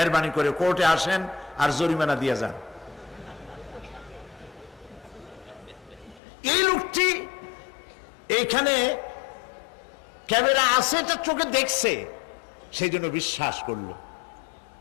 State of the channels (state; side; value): drops out; right; at 6.2 s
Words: করে কোর্টে আসেন আর জরিমানা দিয়ে যান। এই লোকটি এইখানে ক্যামেরা আছে, এটা চোখে দেখছে, সেই জন্য বিশ্বাস করলো।